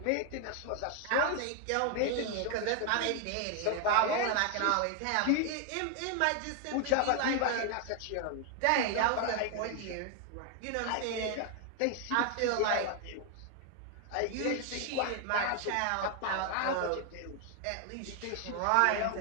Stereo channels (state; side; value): different; both; correlation 0.00